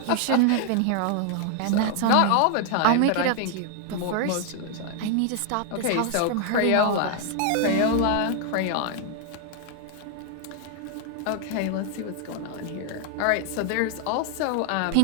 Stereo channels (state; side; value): different; both; correlation 0.00